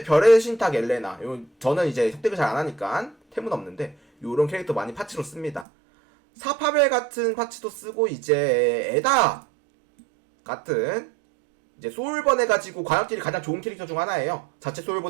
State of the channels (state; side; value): drops out; left; at 5.7 s